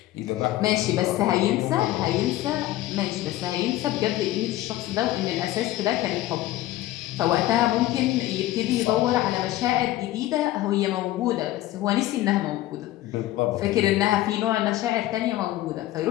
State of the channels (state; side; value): quieter; right; 15.3 dB